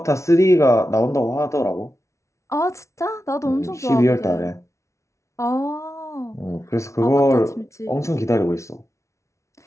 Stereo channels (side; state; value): right; late; 0.14 ms